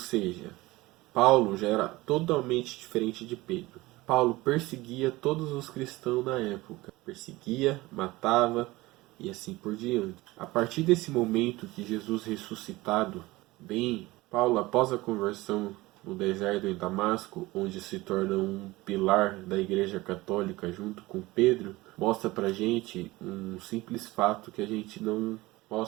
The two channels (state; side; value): quieter; left; 20.0 dB